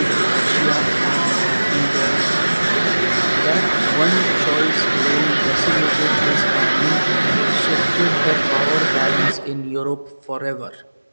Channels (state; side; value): inverted; both; correlation -1.00